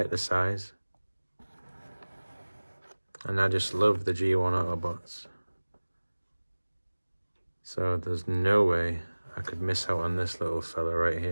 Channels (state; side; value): inverted; both; correlation -1.00